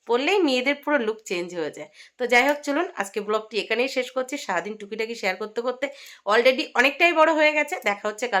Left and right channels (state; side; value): identical; both; correlation 1.00